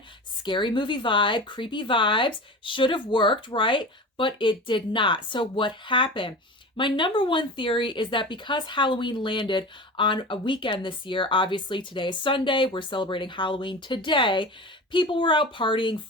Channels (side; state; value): both; normal; correlation 0.32